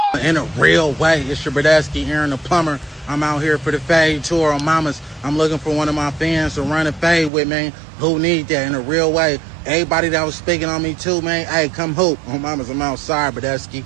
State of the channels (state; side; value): drops out; left; at 7.3 s